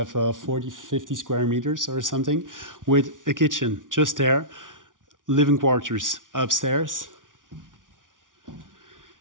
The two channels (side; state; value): left; late; 0.88 ms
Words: 40-50 square meters or something, with a kitchen just there, living quarters upstairs,